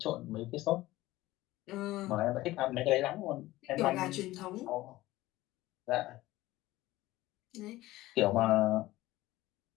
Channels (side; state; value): right; quieter; 17.4 dB